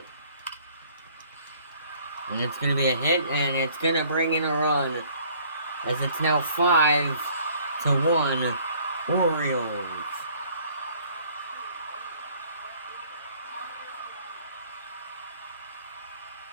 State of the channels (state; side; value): inverted; both; correlation -0.57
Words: And it's going to be a hit, and it's going to bring in a run. As it's now 5-1, Orioles.